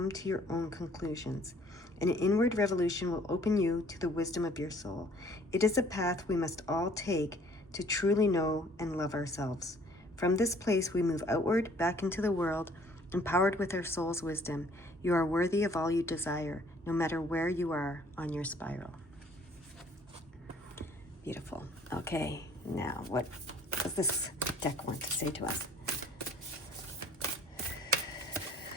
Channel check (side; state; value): both; normal; correlation 0.57